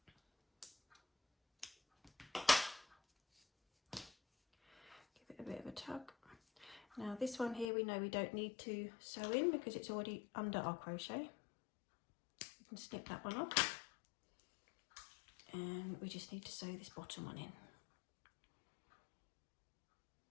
Give it a bit of a tug. Now this one here we know we don't need to sew in because it's already under our crochet. We can snip that one off. And we just need to sew this bottom one in.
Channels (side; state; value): right; drops out; at 7.7 s